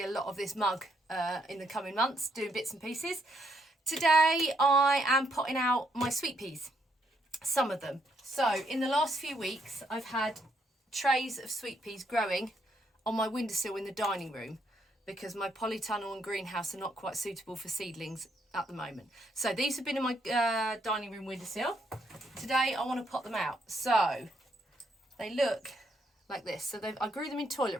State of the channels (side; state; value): both; normal; correlation 0.74